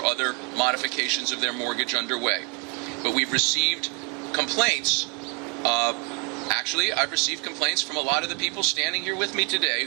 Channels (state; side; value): quieter; left; 33.6 dB